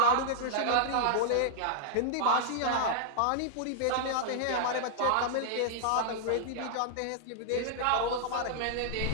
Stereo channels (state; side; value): different; both; correlation -0.01